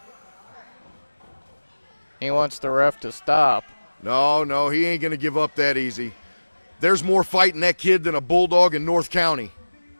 He wants the ref to stop. No, he ain't going to give up that easy. There's more fight in that kid than a bulldog in North County.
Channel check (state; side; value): inverted; both; correlation -1.00